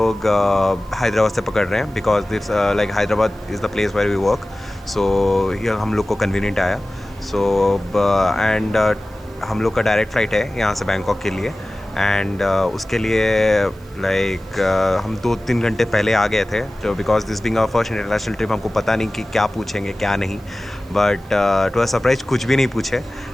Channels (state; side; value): noise; right; hiss, 29 dB below the sound